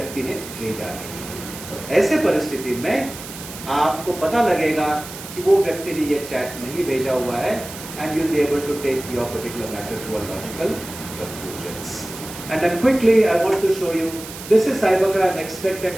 ने भेजा है। तो ऐसे परिस्थिति में आपको पता लगेगा कि वो व्यक्ति ने ये चैट नहीं भेजा हुआ है and you'll be able to take your particular matter to a logical conclusions. And then quickly I want to show you, this is cybercrime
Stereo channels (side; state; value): right; noise; hiss, 13 dB below the sound